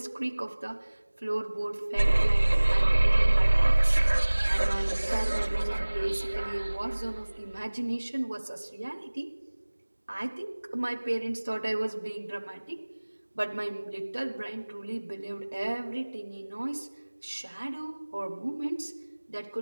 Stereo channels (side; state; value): both; inverted; correlation -1.00